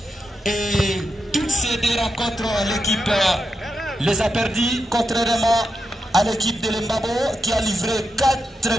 Et toutes ces deux rencontres, l'équipe les a perdus, contrairement à l'équipe de l'Embabo qui a livré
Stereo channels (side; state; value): both; normal; correlation 0.87